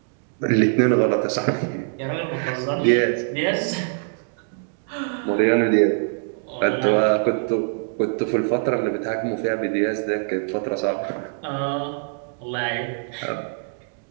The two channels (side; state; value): left; silent; digital silence